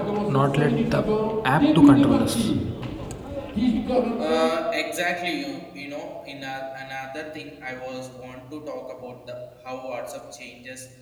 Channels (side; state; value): both; identical; correlation 1.00